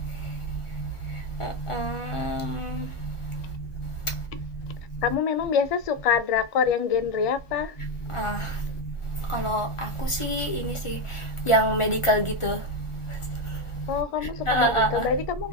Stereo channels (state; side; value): late; right; 1.4 ms